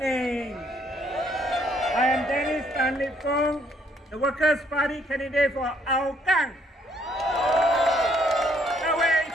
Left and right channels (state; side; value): normal; both; correlation 0.67